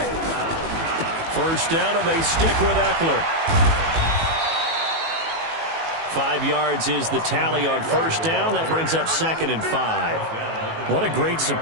First down, and they stick with Eckler. 5 yards is the tally on first down. That brings up 2nd and 5. What a great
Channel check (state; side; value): late; left; 18 ms